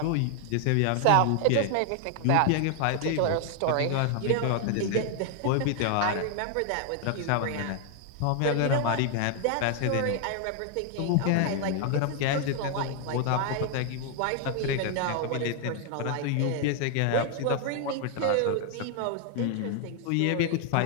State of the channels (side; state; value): both; different; correlation 0.00